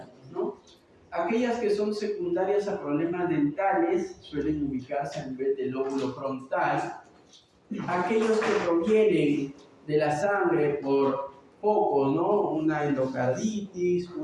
¿no? Aquellas que son secundarias a problemas dentales suelen ubicarse a nivel del lóbulo frontal. Aquellos que provienen de la sangre por focos, ¿no? Una endocarditis,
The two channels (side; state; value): both; identical; correlation 1.00